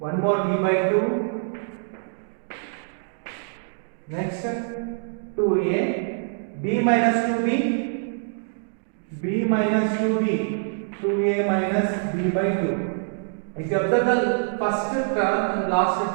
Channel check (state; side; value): silent; left; digital silence